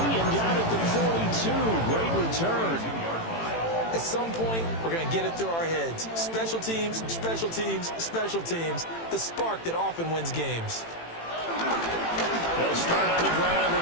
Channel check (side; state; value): right; late; 18 ms